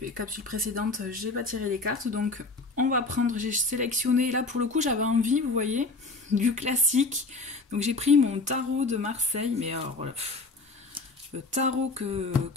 capsules précédentes, j'ai pas tiré les cartes, donc on va prendre, j'ai sélectionné, là pour le coup j'avais envie, vous voyez, du classique, donc j'ai pris mon tarot de Marseille, mais alors voilà, le tarot que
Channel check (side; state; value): right; quieter; 3.5 dB